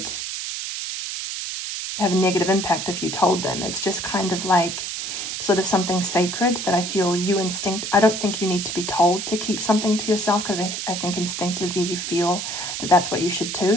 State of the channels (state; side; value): noise; right; hiss, 5 dB below the sound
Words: have a negative impact if you told them. It's just kind of like sort of something sacred that I feel I don't think you need to be told to keep something to yourself, because I think instinctively you feel that that's what you should